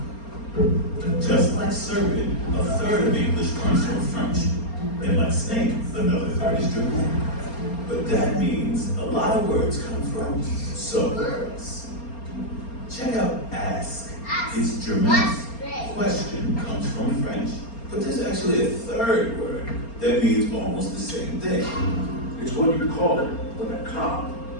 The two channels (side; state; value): right; late; 4.3 ms